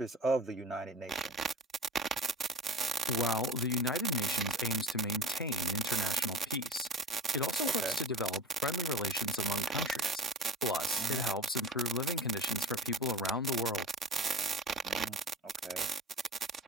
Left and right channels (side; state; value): both; normal; correlation 0.36